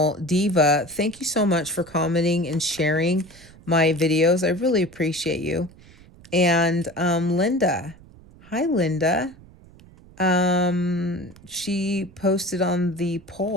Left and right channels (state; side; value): noise; right; rumble, 23 dB below the sound